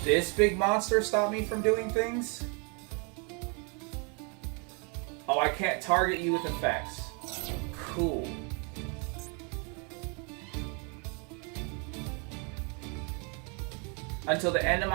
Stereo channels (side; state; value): left; quieter; 34.9 dB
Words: this big monster stop me from doing things? Oh, I can't target you with effects. Cool. Until the end of